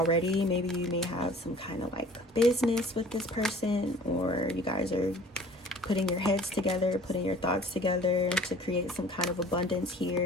Maybe you may have some kind of like business with this person, or you guys are putting your heads together, putting your thoughts together to create some kind of abundance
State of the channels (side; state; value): both; normal; correlation 0.49